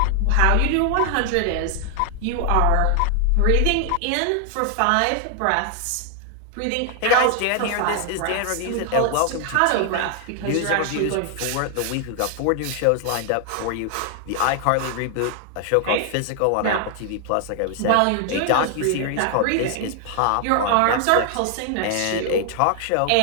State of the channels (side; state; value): both; different; correlation 0.00